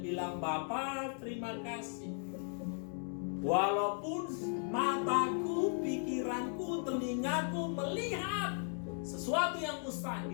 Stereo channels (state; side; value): silent; right; 53 dB below the other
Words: bilang, Bapa, terima kasih. Walaupun mataku, pikiranku, telingaku melihat sesuatu yang